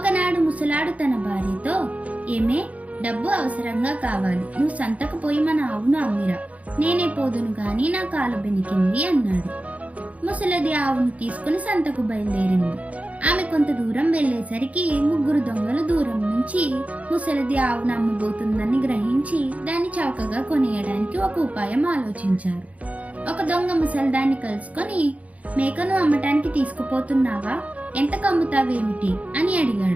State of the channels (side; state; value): left; late; 0.068 ms